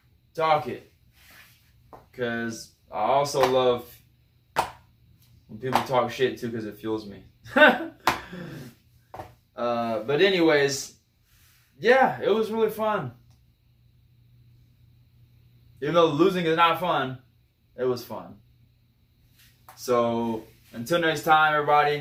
it. Because I also love when people talk shit too, because it fuels me. But anyways, yeah, it was really fun. Even though losing is not fun, it was fun. So until next time,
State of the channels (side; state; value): both; identical; correlation 1.00